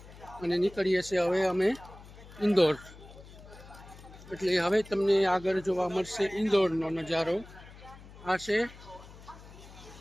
અને નીકળીએ છીએ હવે અમે ઇન્દોર. એટલે હવે તમને આગળ જોવા મળશે ઇન્દોરનો નજારો. આ છે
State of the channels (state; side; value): noise; left; hum, 19 dB below the sound